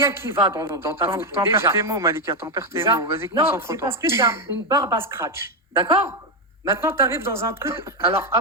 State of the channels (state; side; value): normal; both; correlation 0.06